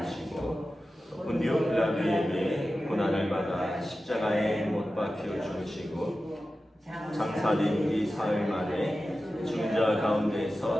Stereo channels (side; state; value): both; normal; correlation 0.94